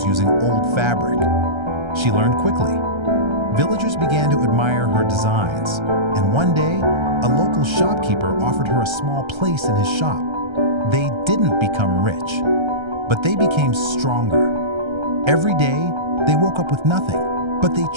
using old fabric. She learned quickly. Villagers began to admire her designs, and one day, a local shopkeeper offered her a small place in his shop. They didn't become rich, but they became stronger. Every day, they woke up with nothing, but they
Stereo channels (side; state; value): left; late; 1.3 ms